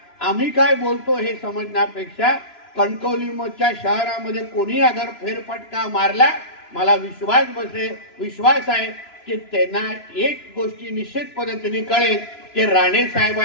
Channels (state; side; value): late; right; 3.0 ms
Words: आम्ही काय बोलतो हे समजण्यापेक्षा कणकवलीच्या शहरामध्ये कोणी अगर फेरफटका मारला, मला विश्वास आहे की त्यांना एक गोष्टी निश्चित पद्धतीने कळेल की राणे